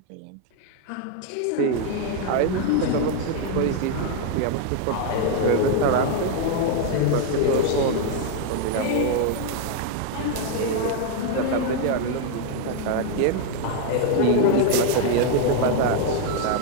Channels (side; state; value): both; different; correlation 0.00